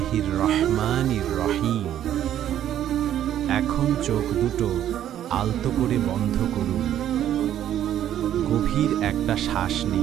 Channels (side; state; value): left; quieter; 11.1 dB